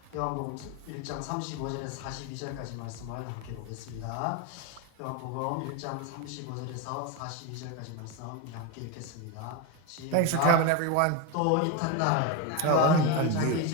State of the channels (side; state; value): both; different; correlation 0.03